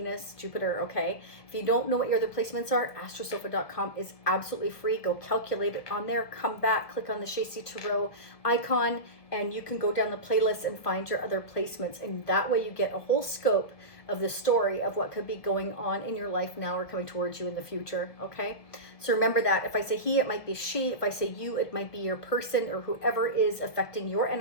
Jupiter, okay? If you don't know what your other placements are, astrosofa.com is absolutely free. Go calculate it on there, come back, click on the Shacy Tarot icon, and you can go down the playlist and find your other placements, and that way you get a whole scope of the story of what could be going on in your life now or coming towards you in the future, okay? So remember that if I say he, it might be she. If I say you, it might be your person, or whoever is affecting your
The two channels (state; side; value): late; right; 1.6 ms